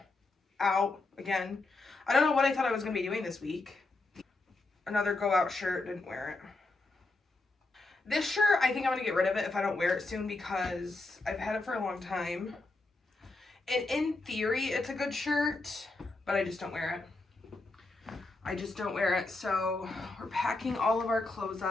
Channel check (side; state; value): right; quieter; 3.2 dB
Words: out again. I don't know what I thought I was gonna be doing this week. Another go out shirt, didn't wear it. This shirt, I think I'm going to get rid of it if I don't wear it soon because I've had it for a long time. And in theory, it's a good shirt, but I just don't wear it. I just don't wear it. So we're packing all of our clothes